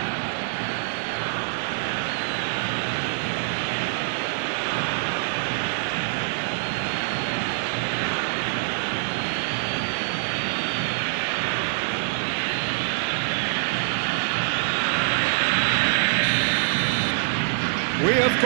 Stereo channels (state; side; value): silent; left; digital silence